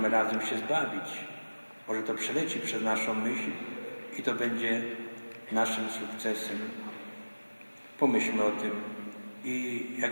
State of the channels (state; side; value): inverted; both; correlation -1.00